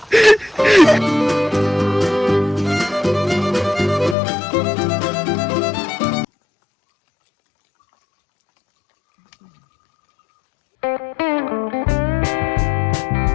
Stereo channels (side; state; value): right; drops out; at 4.2 s